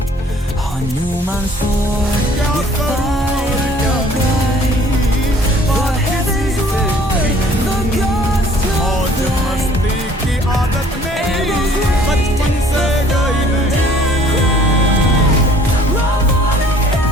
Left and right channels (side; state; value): both; normal; correlation 0.55